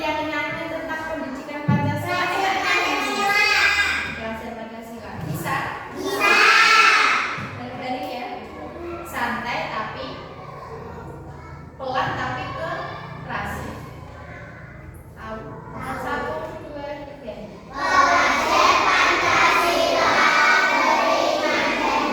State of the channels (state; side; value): identical; both; correlation 1.00